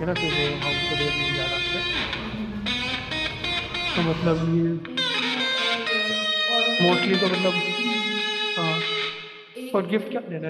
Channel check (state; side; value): identical; both; correlation 1.00